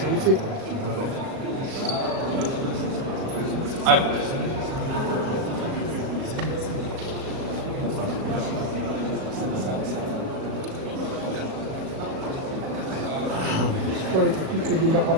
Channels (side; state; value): left; late; 37 ms